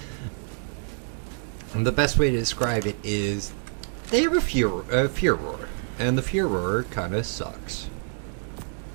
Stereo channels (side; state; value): left; silent; 60 dB below the other